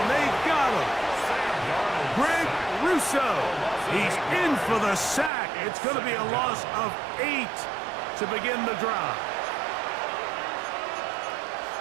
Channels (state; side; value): drops out; left; at 5.3 s